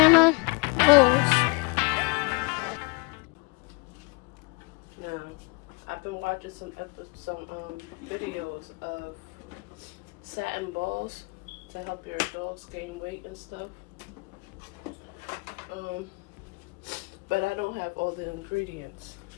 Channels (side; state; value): right; quieter; 30.0 dB